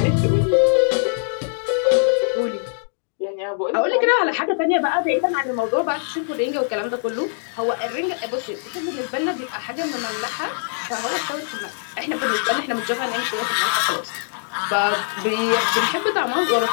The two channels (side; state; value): right; silent; digital silence